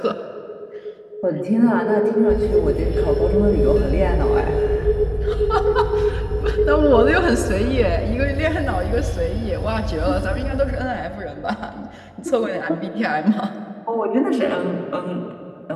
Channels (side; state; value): both; identical; correlation 1.00